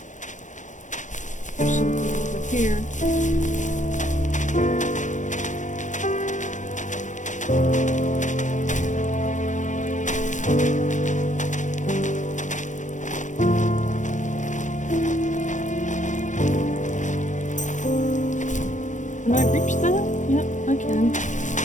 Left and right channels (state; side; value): late; right; 0.36 ms